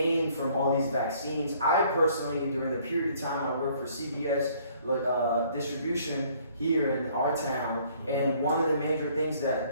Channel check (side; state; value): both; inverted; correlation -0.60